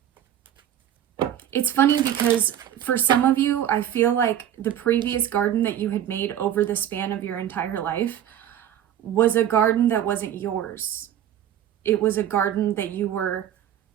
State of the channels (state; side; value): quieter; left; 10.6 dB